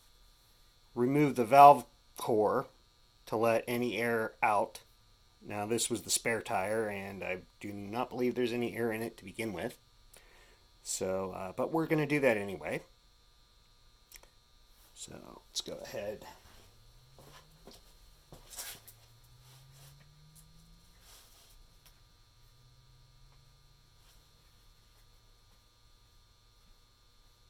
remove the valve core to let any air out. Now, this was the spare tire, and I do not believe there's any air in it to begin with. So, but we're going to do that anyway. So, let's go ahead.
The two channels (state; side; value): identical; both; correlation 1.00